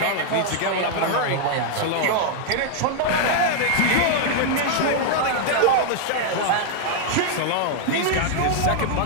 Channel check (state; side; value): different; both; correlation 0.00